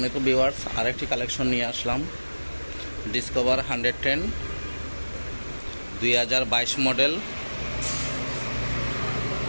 ভিউয়ার্স, আরেকটি কালেকশন নিয়ে আসলাম। ডিসকভার 110 2022 মডেল,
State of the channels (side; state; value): both; inverted; correlation -1.00